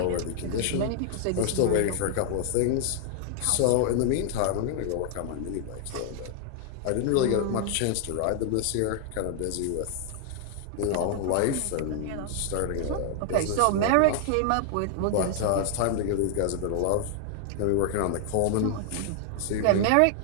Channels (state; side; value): different; both; correlation 0.00